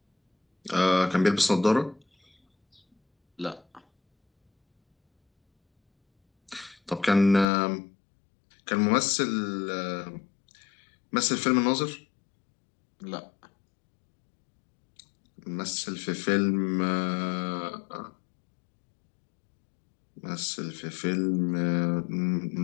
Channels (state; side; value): drops out; right; at 7.5 s